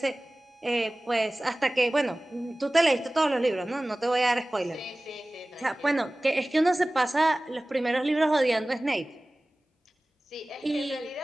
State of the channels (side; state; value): both; normal; correlation 0.98